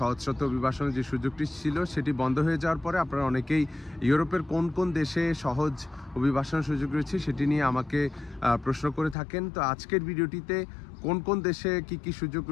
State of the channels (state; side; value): drops out; right; at 9.2 s